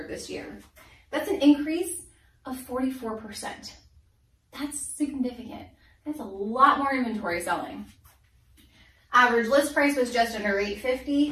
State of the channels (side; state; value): both; identical; correlation 1.00